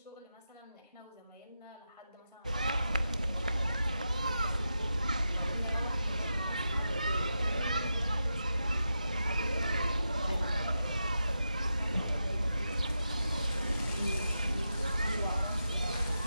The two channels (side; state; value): both; inverted; correlation -0.88